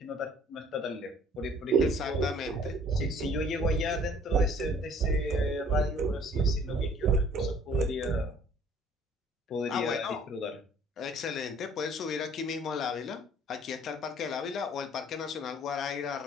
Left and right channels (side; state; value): both; normal; correlation 0.55